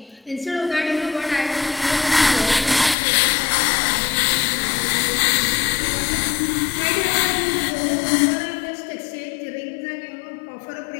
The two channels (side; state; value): right; drops out; at 3.0 s